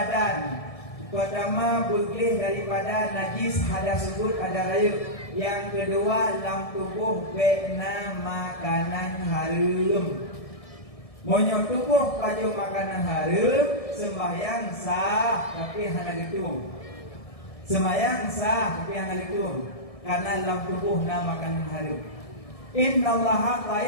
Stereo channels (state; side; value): late; right; 1.7 ms